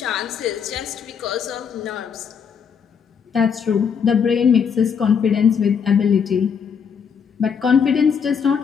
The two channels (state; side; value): quieter; right; 6.8 dB